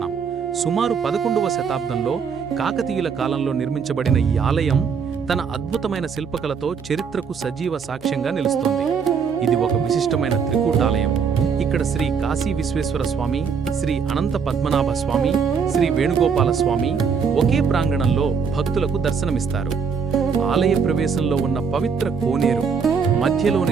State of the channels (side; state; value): left; quieter; 6.1 dB